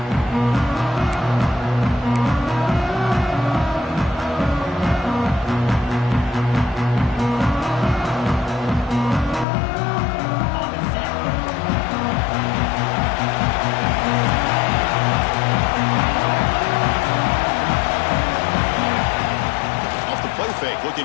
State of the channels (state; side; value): drops out; right; at 9.5 s